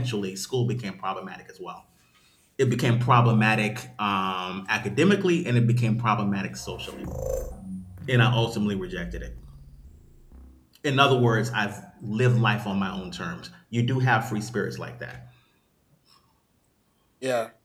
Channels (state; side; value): identical; both; correlation 1.00